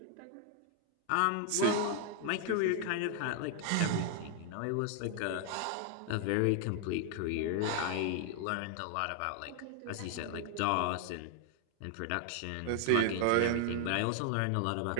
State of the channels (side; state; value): both; different; correlation 0.00